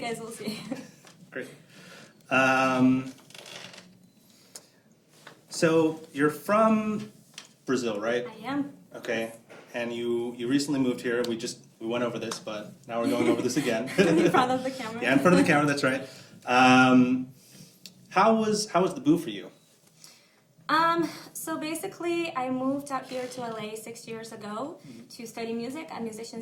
will see. Great. So you're from Brazil, right? I am. Okay. And you recently moved here. We went over this, but now we're going over this again. In front of the camera. Yeah, in front of the camera. That's right. How was the boo for you? So basically, I moved out here to LA 6 years ago to study music at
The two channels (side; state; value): both; identical; correlation 1.00